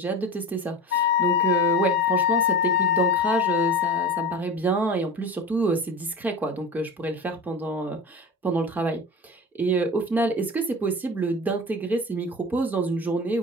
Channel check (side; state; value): both; normal; correlation 0.30